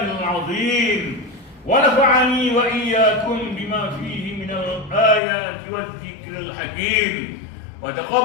azim wa nafa'ani wa iyyakum bima fihi minal ayati waz zikril hakim wa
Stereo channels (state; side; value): drops out; right; at 5.2 s